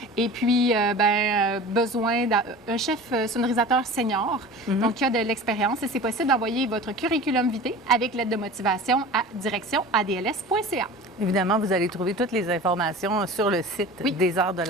et puis besoin d'un chef sonorisateur senior, donc qui a de l'expérience, et c'est possible d'envoyer votre curriculum vitae avec lettre de motivation à direction@adls.ca. Évidemment, vous allez trouver toutes les informations sur le site des Arts de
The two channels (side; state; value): both; normal; correlation 0.37